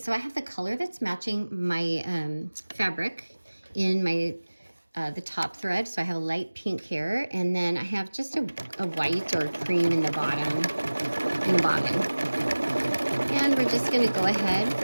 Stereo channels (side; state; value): both; inverted; correlation -1.00